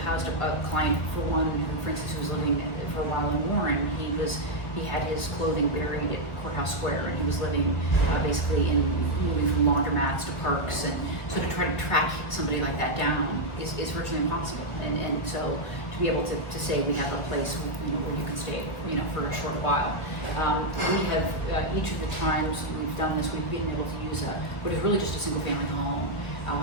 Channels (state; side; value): late; right; 1.4 ms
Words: housed a client, for one, who, for instance, who was living for a while in Warren. He had his clothing buried at Courthouse Square, and he was living basically in moving from laundromats to parks, and so to try to track somebody like that down is virtually impossible. And so to be able to say we have a place where you can stay for a short while. We have each of the times we've done this, we've been able to use what is really just a single family home,